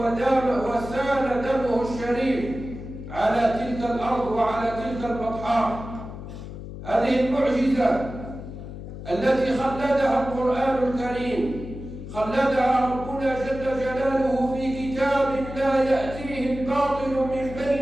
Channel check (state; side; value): noise; left; hum, 11 dB below the sound